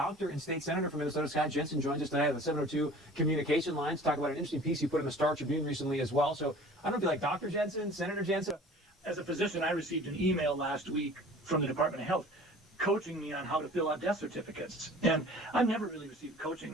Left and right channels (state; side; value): normal; both; correlation 0.45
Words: and state senator from Minnesota, Scott Jensen, joins us today on the 702 communication lines to talk about an interesting piece you put in the Star Tribune recently as well. So I don't know if you like Dr. Jensen, Senator Jensen. As a physician, I received an email last week from the Department of Health coaching me on how to fill out death certificates. And I've never really received